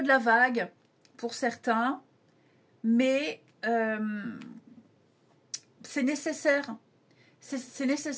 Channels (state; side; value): identical; both; correlation 1.00